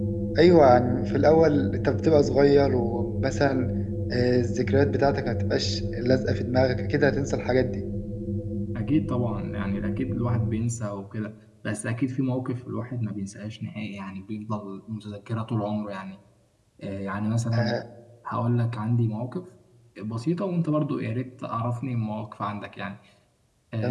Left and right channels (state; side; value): identical; both; correlation 1.00